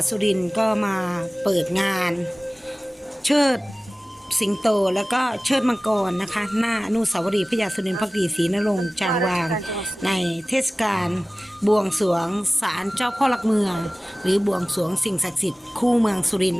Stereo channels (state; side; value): normal; both; correlation 0.97